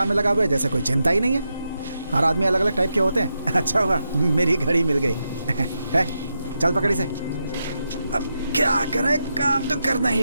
में लगा हुआ है, जैसे कोई चिंता ही नहीं है। हर आदमी अलग अलग टाइप के होते हैं। अच्छा हुआ मेरी घड़ी मिल गई। है, चल पकड़ी से। अब क्या करें, काम तो करना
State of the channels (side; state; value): both; inverted; correlation -0.86